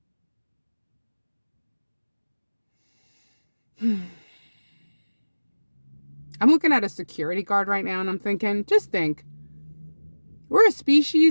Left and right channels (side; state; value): both; inverted; correlation -1.00